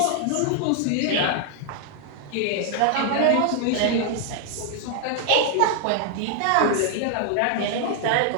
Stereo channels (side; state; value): both; different; correlation 0.00